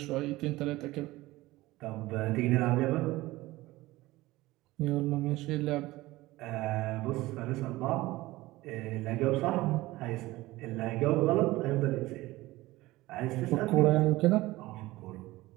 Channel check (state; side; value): quieter; left; 18.7 dB